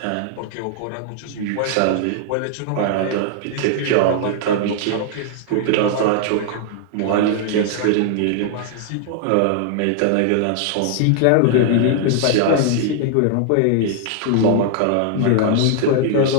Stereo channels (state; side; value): different; both; correlation 0.00